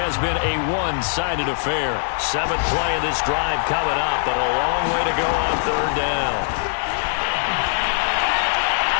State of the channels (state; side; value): silent; right; 65 dB below the other